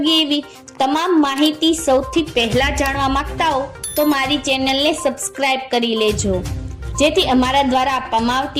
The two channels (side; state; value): both; identical; correlation 1.00